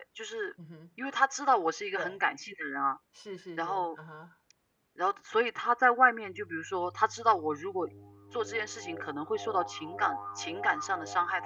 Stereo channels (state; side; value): identical; both; correlation 1.00